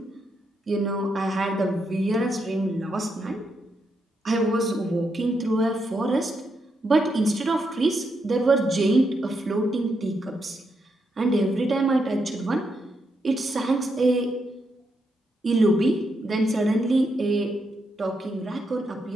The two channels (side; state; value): both; normal; correlation 0.81